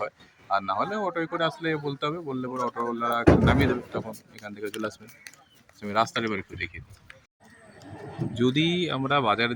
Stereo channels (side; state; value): both; identical; correlation 1.00